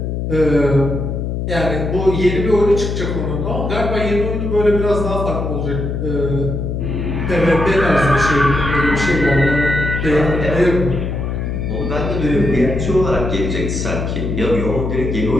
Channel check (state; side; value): noise; left; hum, 2 dB below the sound